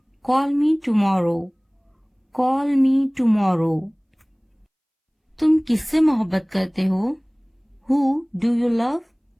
call me tomorrow, call me tomorrow. तुम किससे मोहब्बत करते हो, who do you love,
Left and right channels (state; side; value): identical; both; correlation 1.00